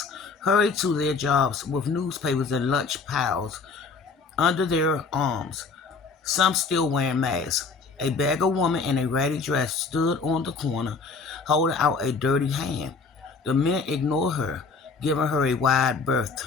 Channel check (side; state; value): right; quieter; 4.6 dB